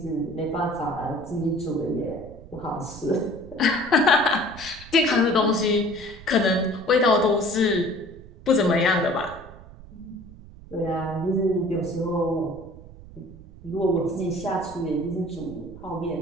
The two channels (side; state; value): right; noise; rumble, 18 dB below the sound